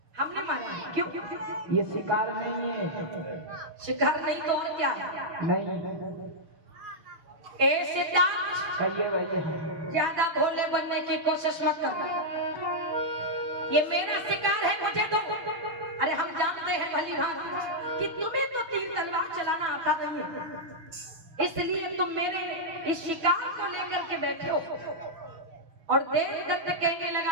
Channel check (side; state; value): left; late; 6.7 ms